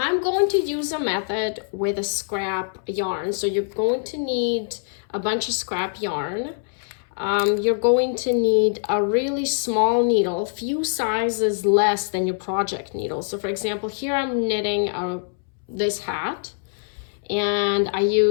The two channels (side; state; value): right; silent; 63 dB below the other